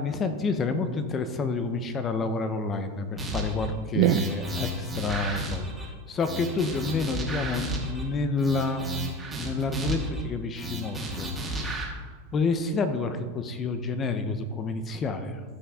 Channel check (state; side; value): normal; both; correlation 0.36